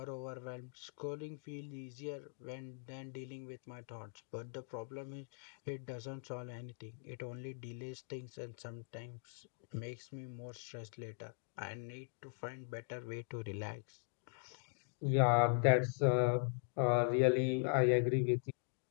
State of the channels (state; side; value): silent; right; digital silence